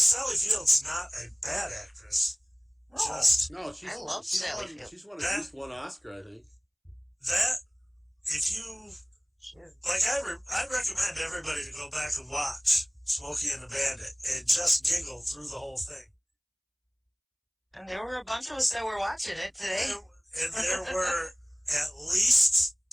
Sally Field's not a bad actress. No. I love Sally Field. She's won at least one Oscar, I think. That, if you, like, I recommend everybody to go back and watch Smokey and the Bandit and just giggle through the whole thing. And there were a bunch of us that were watching it today. And there were at least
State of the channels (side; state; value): both; identical; correlation 1.00